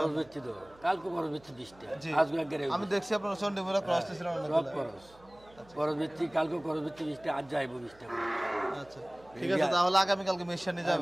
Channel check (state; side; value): noise; right; hum, 26 dB below the sound